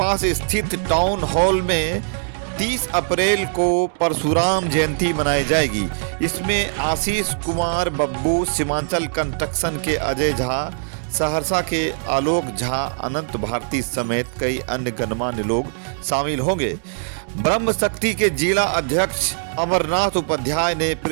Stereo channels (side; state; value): left; silent; digital silence